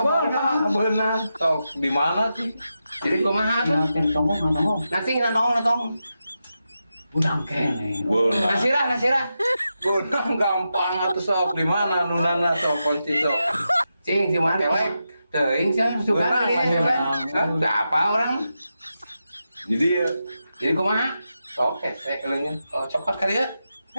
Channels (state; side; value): inverted; both; correlation -0.88